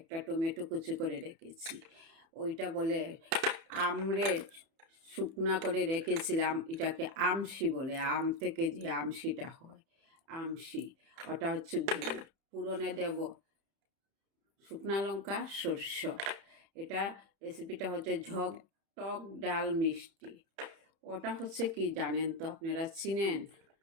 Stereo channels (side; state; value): left; late; 31 ms